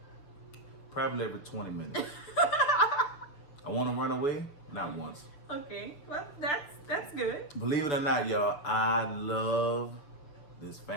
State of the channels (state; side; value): late; right; 6.8 ms